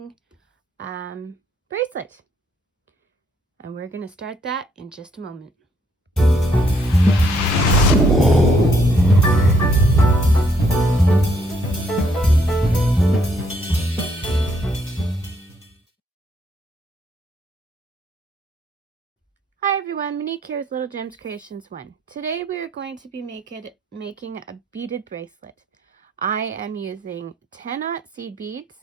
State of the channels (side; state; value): both; normal; correlation 0.70